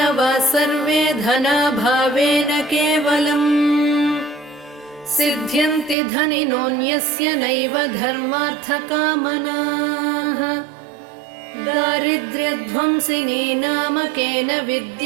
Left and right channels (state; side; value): drops out; left; at 6.0 s